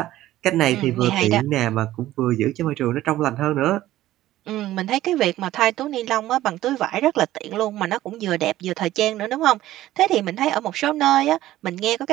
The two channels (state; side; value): quieter; left; 14.7 dB